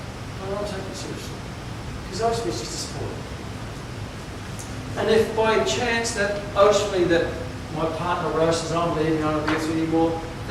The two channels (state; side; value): identical; both; correlation 1.00